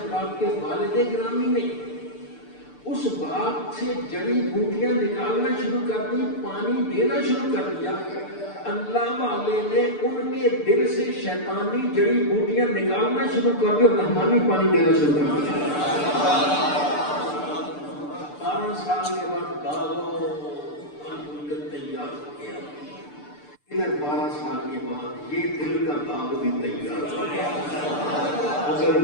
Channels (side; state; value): right; late; 6.8 ms